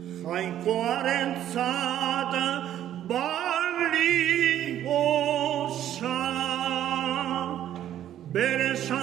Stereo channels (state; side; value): quieter; left; 11.4 dB